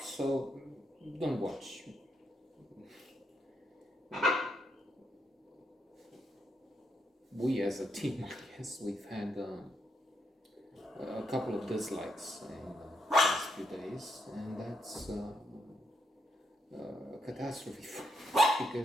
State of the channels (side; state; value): both; normal; correlation 0.78